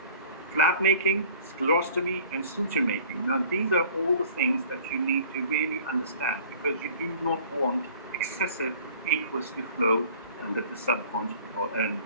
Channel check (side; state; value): both; inverted; correlation -0.49